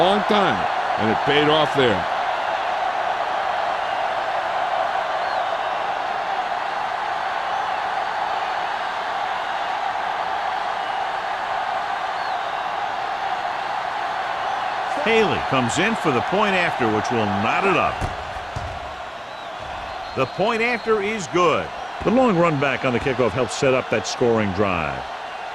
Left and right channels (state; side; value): identical; both; correlation 1.00